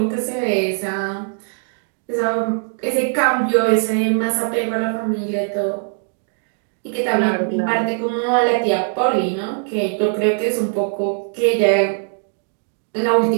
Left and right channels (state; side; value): silent; left; digital silence